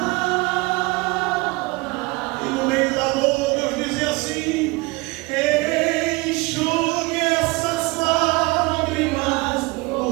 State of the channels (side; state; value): left; quieter; 24.4 dB